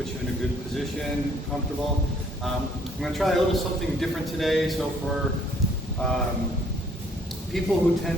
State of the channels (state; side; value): normal; both; correlation 0.63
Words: you in a good position, comfortable. I'm going to try a little something different today. So for people who